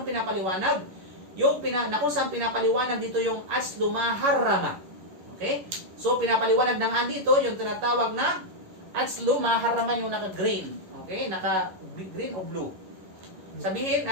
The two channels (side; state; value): left; late; 11 ms